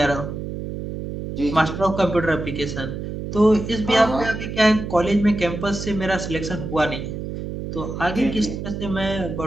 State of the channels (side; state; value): right; noise; hum, 6 dB below the sound